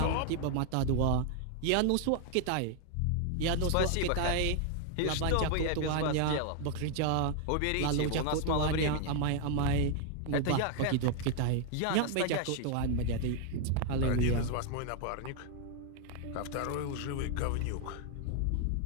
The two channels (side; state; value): both; different; correlation 0.00